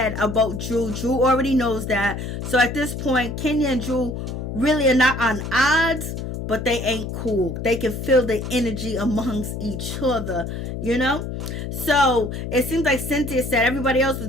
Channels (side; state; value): left; noise; hum, 6 dB below the sound